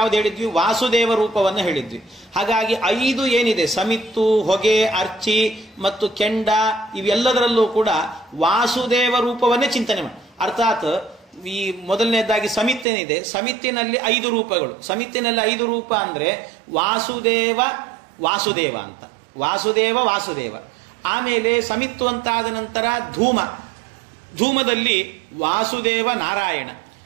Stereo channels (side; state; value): left; drops out; at 12.9 s